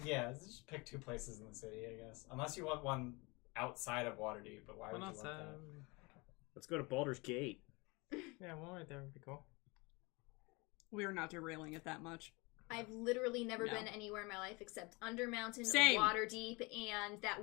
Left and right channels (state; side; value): quieter; right; 26.6 dB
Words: Yeah, let's just pick 2 places in the city, I guess. Unless you want one outside of Waterdeep, but why would you want that? Let's go to Baldur's Gate. Yeah, one right there would be cool. We are not derailing it that much. I've literally never No. been anywhere in my life except Undermountain, Same. Waterdeep, and